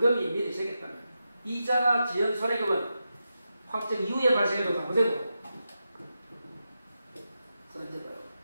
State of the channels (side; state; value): both; inverted; correlation -0.88